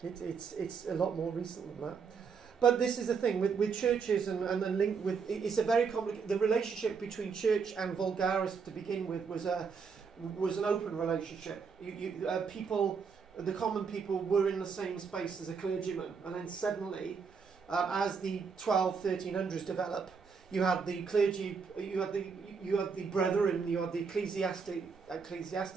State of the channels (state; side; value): quieter; left; 5.7 dB